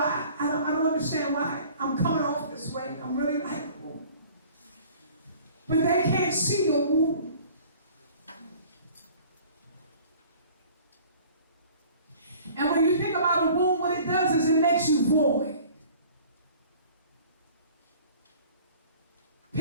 don't understand why I'm coming off this way. I'm really likable. But they can't see your womb. And when you think about a womb, what it does is it makes you void.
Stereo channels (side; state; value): both; inverted; correlation -0.49